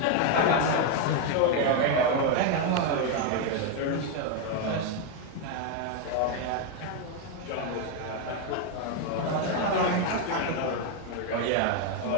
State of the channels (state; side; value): different; both; correlation 0.01